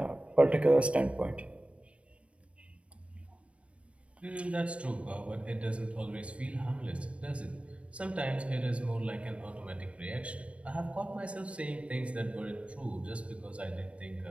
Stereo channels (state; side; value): late; left; 0.062 ms